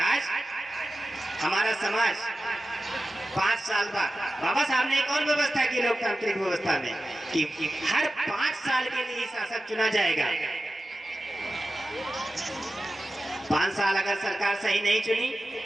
हमारा समाज 5 साल बाद, बाबा साहब ने एक और व्यवस्था की लोकतांत्रिक व्यवस्था में कि हर 5 साल के लिए शासक चुना जाएगा। 5 साल अगर सरकार सही नहीं चुनी,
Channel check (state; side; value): normal; both; correlation 0.94